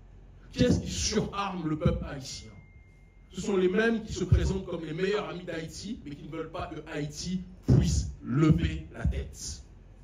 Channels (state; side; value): identical; both; correlation 1.00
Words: Qui est-ce qui surarme le peuple haïtien? Ce sont les mêmes qui se présentent comme les meilleurs amis d'Haïti, mais qui ne veulent pas que Haïti puisse lever la tête.